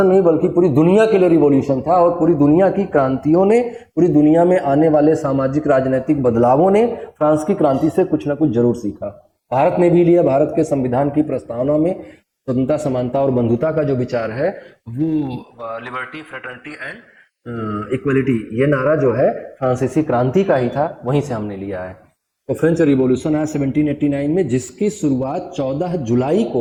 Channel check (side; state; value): both; identical; correlation 1.00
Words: नहीं बल्कि पूरी दुनिया के लिए रिवॉल्यूशन था, और पूरी दुनिया की क्रांतियों ने, पूरी दुनिया में आने वाले सामाजिक राजनीतिक बदलावों ने फ्रांस की क्रांति से कुछ ना कुछ जरूर सीखा। भारत ने भी लिया। भारत के संविधान की प्रस्तावना में स्वतंत्रता, समानता और बंधुता का जो विचार है, वो लिबर्टी, फ्रेटर्निटी एंड इक्वलिटी, ये नारा जो है फ्रांसीसी क्रांति का ही था, वहीं से हमने लिया है। तो फ्रेंच रिवॉल्यूशन आया 1789 में, जिसकी शुरुआत 14 जुलाई